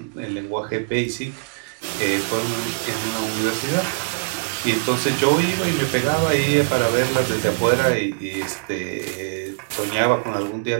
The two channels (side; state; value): left; quieter; 36.3 dB